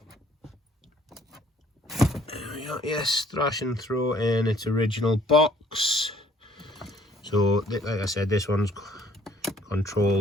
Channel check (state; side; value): normal; both; correlation 0.61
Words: There we go. Yes, Thrash and Throw in its original box. So like I said, this one's